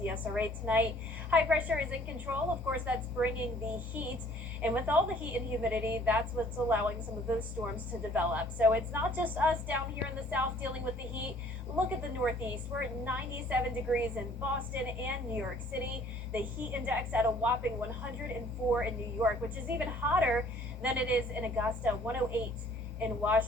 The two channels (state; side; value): normal; both; correlation 0.57